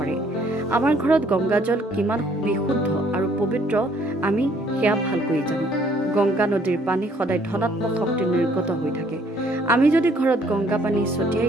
আমাৰ ঘৰত গংগাজল কিমান বিশুদ্ধ আৰু পবিত্ৰ আমি সেয়া ভালকৈ জানো। গংগা নদীৰ পানী সদায় ধনাত্মক শক্তি নিৰ্গত হৈ থাকে। আমি যদি ঘৰত গংগা পানী ছটিয়াই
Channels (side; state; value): both; normal; correlation 0.63